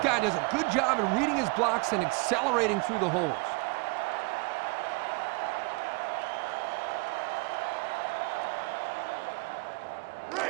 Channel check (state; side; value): quieter; left; 28.3 dB